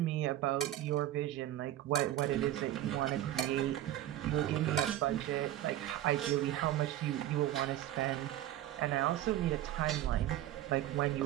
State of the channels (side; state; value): left; quieter; 13.2 dB